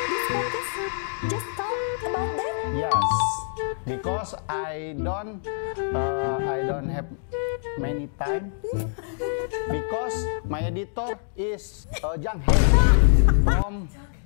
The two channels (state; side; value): silent; right; digital silence